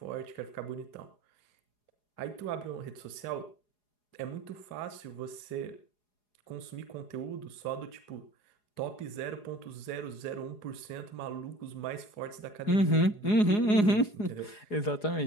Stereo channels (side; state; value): right; late; 4.8 ms